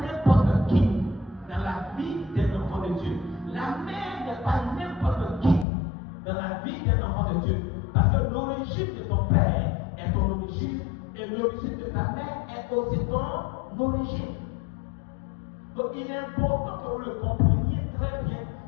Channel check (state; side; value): drops out; right; at 5.7 s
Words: n'importe qui dans la vie d'un enfant de Dieu. La mère n'est pas n'importe qui dans la vie d'un enfant de Dieu. Parce que l'origine de ton père est ton origine et l'origine de ta mère est aussi ton origine. Donc il est important que vous le compreniez très bien